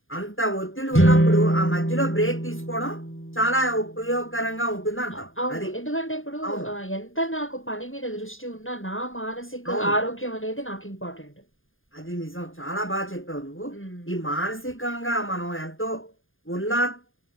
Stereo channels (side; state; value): right; late; 0.59 ms